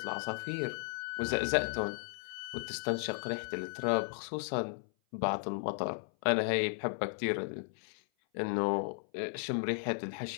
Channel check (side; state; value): right; silent; 54 dB below the other